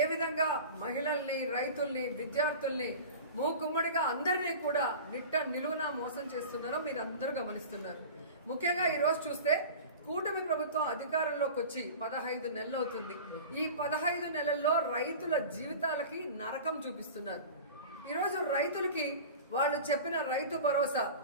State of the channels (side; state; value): both; inverted; correlation -0.35